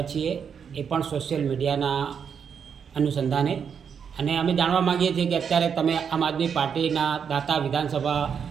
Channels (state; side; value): quieter; left; 7.1 dB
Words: છીએ, એ પણ સોશિયલ મીડિયાના અનુસંધાને, અને અમે જાણવા માગીએ છીએ કે અત્યારે તમે આમ આદમી પાર્ટીના દાતા વિધાનસભા